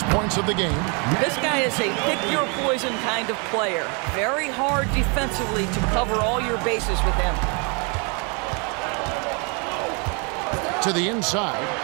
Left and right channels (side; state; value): left; quieter; 33.9 dB